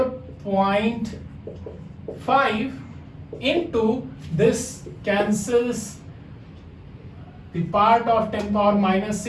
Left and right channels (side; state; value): both; identical; correlation 1.00